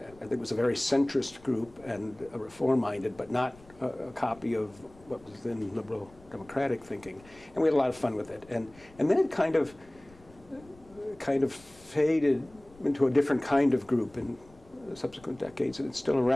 think it was a very centrist group and a reform-minded, but not a copy of what was then liberal democratic thinking. And we had a lot of fun with it. And then it kind of faded into a different kind of group in subsequent decades, and it's still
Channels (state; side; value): noise; left; rumble, 25 dB below the sound